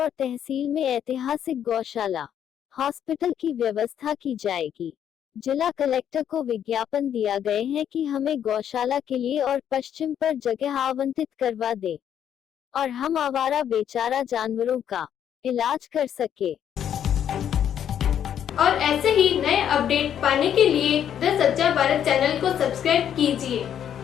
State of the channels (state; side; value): quieter; right; 9.5 dB